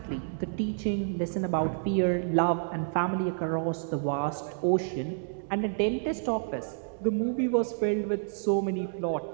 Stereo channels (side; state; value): left; silent; digital silence